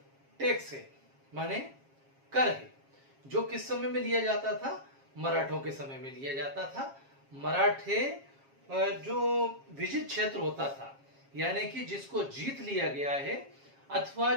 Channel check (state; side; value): late; left; 7.4 ms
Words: टैक्स है, माने कर है, जो किस समय में लिया जाता था? मराठों के समय में लिया जाता था। मराठे जो विजित क्षेत्र होता था, यानी कि जिसको जीत लिया गया है, अथवा